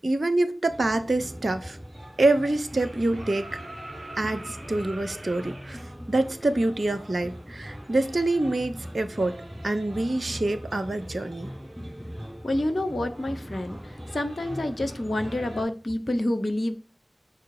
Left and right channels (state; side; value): normal; both; correlation 0.95